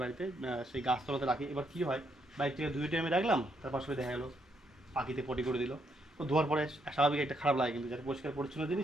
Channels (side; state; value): both; normal; correlation 0.76